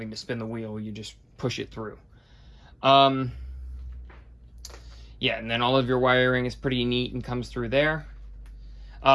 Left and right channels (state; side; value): identical; both; correlation 1.00